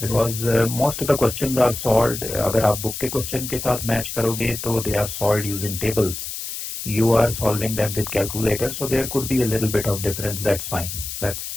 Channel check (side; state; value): left; noise; hiss, 7 dB below the sound